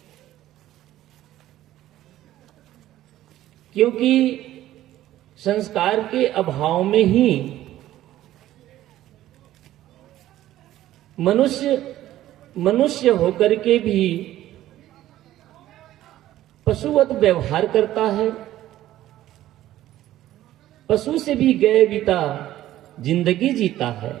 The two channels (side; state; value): left; quieter; 13.9 dB